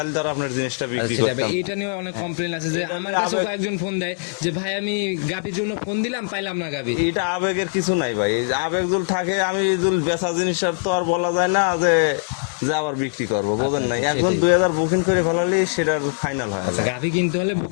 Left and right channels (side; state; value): right; silent; digital silence